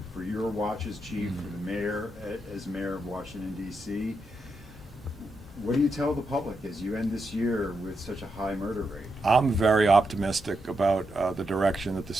your watch as chief, for the mayor as mayor of Washington, D.C. What do you tell the public as you end this year with such a high murder rate? I'm very optimistic about the direction that the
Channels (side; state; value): both; normal; correlation 0.84